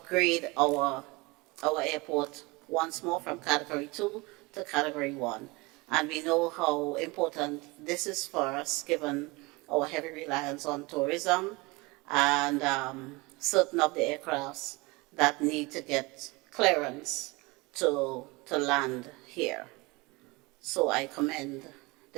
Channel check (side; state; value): left; quieter; 24.7 dB